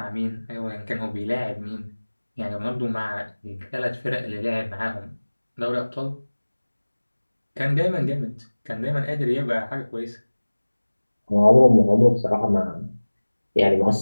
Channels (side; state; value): both; inverted; correlation -1.00